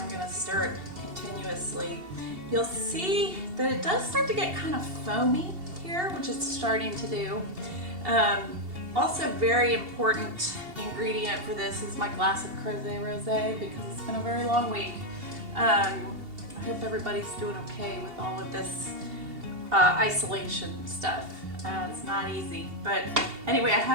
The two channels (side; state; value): left; late; 2.7 ms